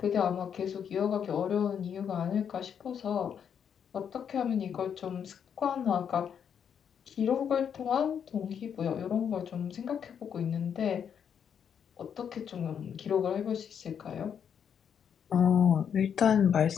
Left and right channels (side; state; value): right; quieter; 7.9 dB